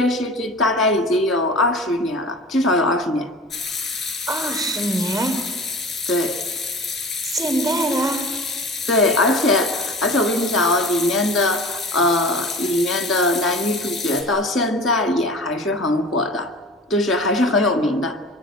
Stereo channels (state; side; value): normal; both; correlation 0.38